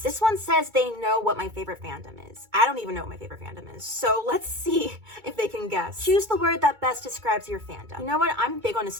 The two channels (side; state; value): left; late; 2.2 ms